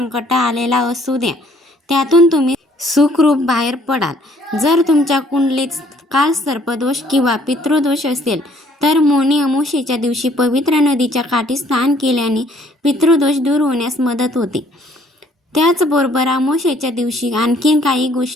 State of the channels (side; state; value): both; normal; correlation 0.62